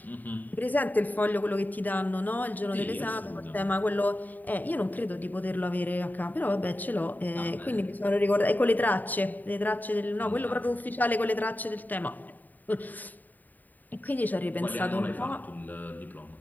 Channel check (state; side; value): late; right; 0.086 ms